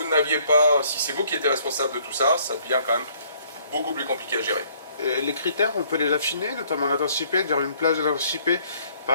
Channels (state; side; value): inverted; both; correlation -0.62